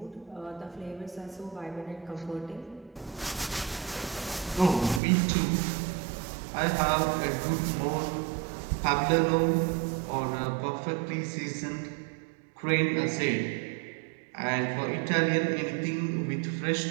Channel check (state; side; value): drops out; left; at 5.0 s